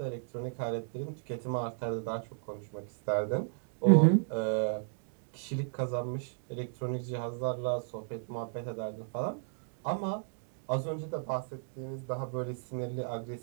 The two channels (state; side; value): silent; left; digital silence